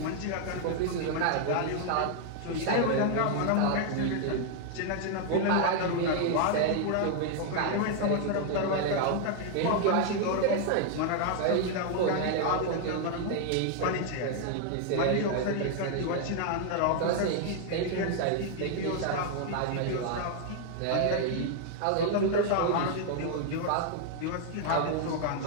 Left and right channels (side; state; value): both; different; correlation 0.00